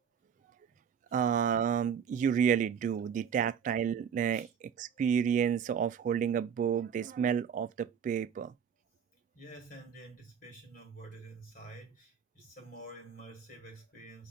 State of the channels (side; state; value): left; quieter; 7.5 dB